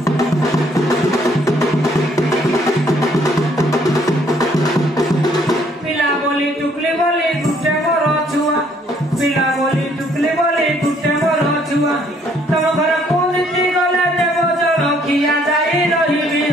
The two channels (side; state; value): both; normal; correlation 0.65